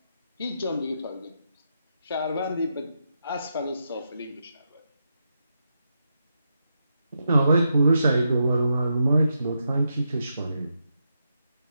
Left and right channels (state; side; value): inverted; both; correlation -0.84